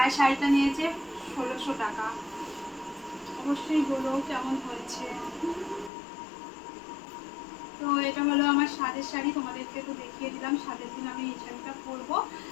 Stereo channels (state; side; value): drops out; right; at 5.9 s